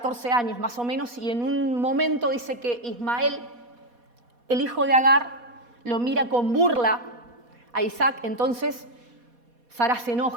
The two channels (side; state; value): left; late; 4.2 ms